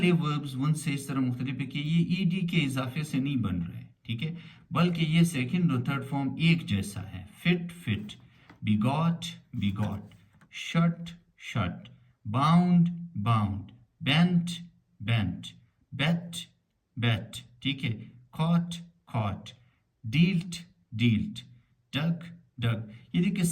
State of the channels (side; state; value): both; identical; correlation 1.00